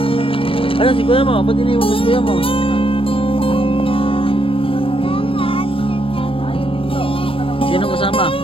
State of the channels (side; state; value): right; late; 0.26 ms